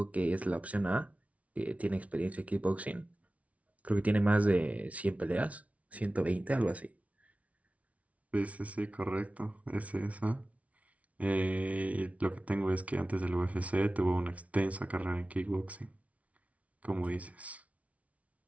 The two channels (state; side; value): late; left; 0.066 ms